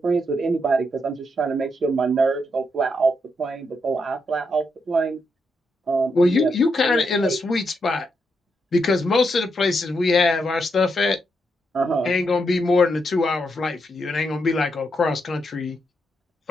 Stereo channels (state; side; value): normal; both; correlation 0.81